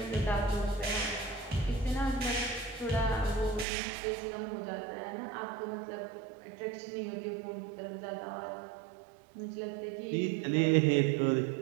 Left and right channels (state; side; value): drops out; left; at 3.7 s